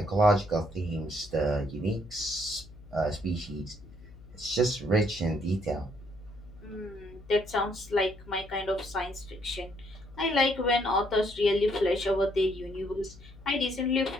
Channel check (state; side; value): noise; left; hum, 20 dB below the sound